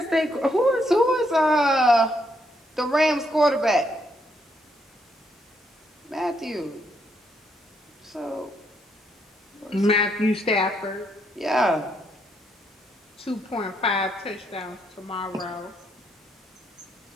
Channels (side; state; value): both; normal; correlation 0.75